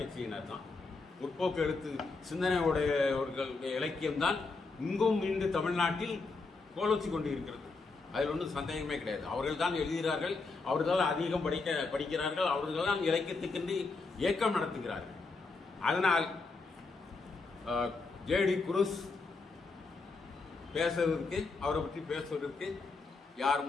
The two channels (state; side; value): quieter; right; 4.0 dB